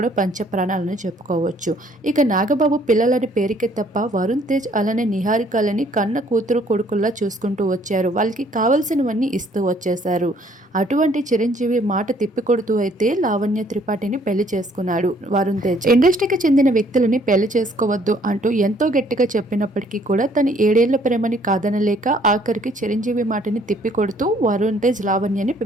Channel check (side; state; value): both; normal; correlation 0.62